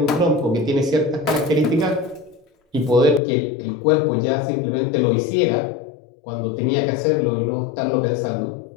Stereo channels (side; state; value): right; drops out; at 3.2 s